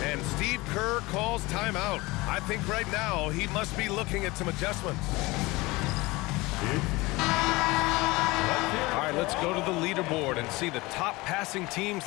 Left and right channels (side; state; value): right; quieter; 22.1 dB